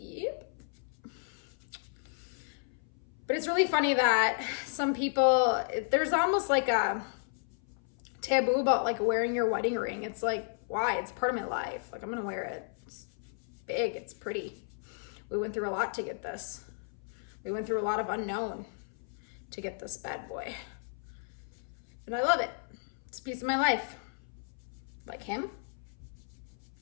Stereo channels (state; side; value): silent; right; 55 dB below the other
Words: But it's really funny that some people, there's almost like a taboo about like wearing your wedding ring. It's like, why? It's part of my life. Like, I'm gonna wear it. It's big, it's pretty. We went through a lot to get this. We went through a lot of unknown to get this bad boy. And I love it. It's a piece of my life. Like him,